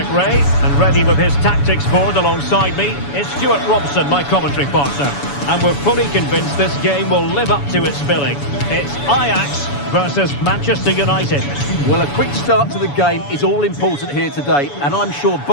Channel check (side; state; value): right; late; 7.0 ms